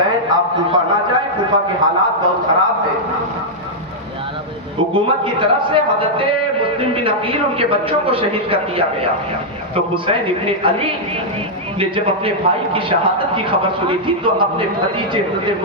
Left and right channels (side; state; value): both; normal; correlation -0.06